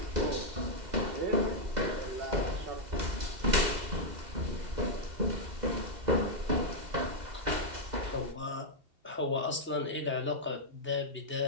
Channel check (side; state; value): left; late; 2.0 ms